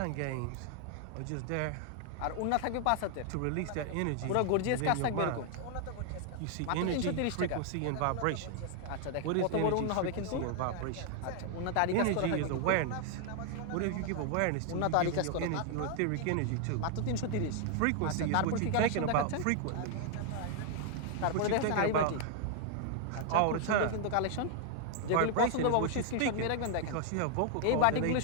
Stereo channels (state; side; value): different; both; correlation 0.00